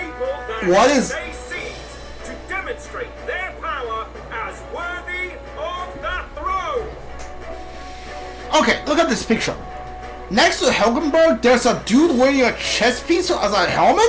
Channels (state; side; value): identical; both; correlation 1.00